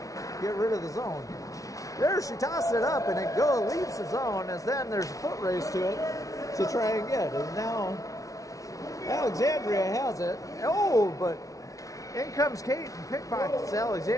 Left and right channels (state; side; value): late; right; 0.17 ms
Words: get rid of the zone. There she tosses it up, and it leaves the zone, as then there's a foot race to it to try and get. And now Alexandria has it. But in comes Kate and pickpockets